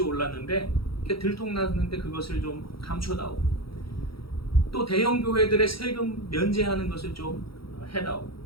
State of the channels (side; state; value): right; late; 0.75 ms